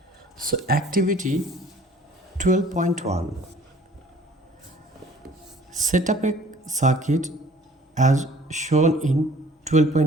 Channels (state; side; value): normal; both; correlation 0.53